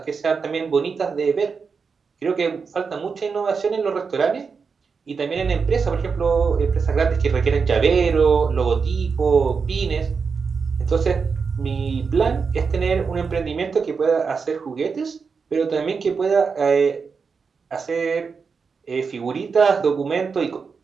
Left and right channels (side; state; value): left; quieter; 5.4 dB